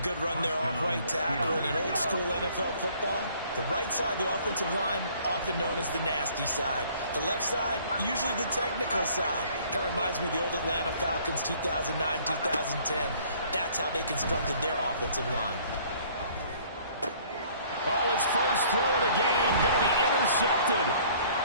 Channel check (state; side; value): inverted; both; correlation -0.56